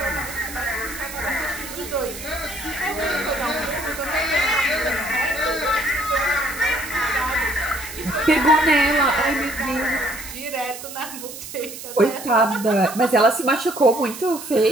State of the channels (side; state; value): right; noise; hiss, 11 dB below the sound